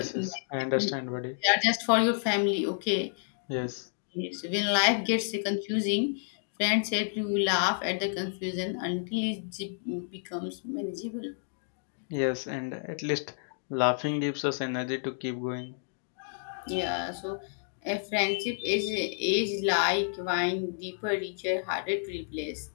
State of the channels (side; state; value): right; silent; digital silence